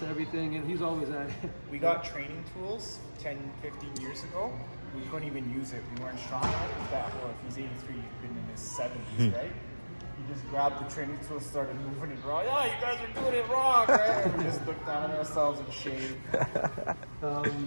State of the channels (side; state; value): both; inverted; correlation -1.00